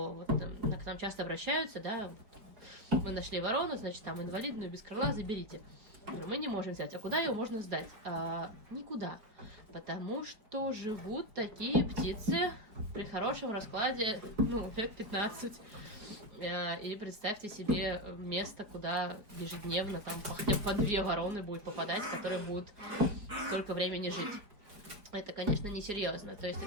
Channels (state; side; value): late; left; 4.6 ms